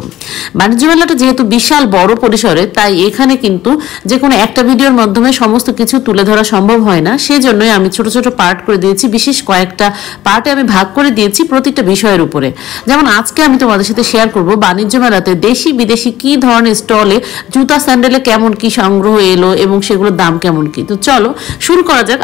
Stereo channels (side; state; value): right; quieter; 13.8 dB